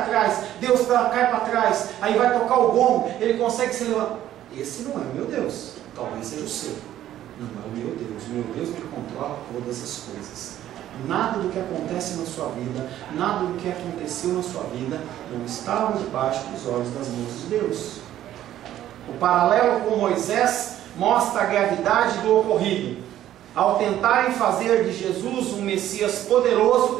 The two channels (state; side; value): quieter; left; 12.4 dB